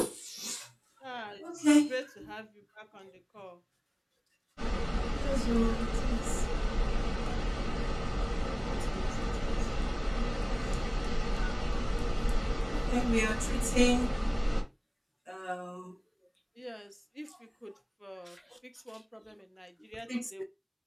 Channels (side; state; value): both; identical; correlation 1.00